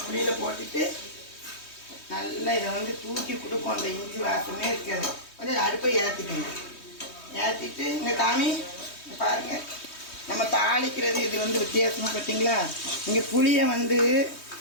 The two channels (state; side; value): late; right; 3.2 ms